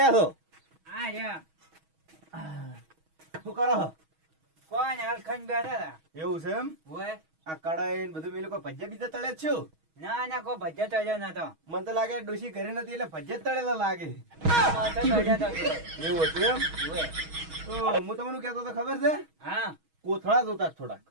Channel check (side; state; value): left; late; 6.3 ms